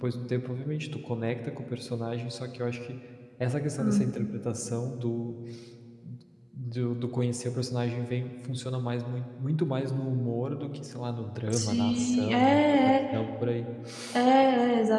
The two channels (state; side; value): identical; both; correlation 1.00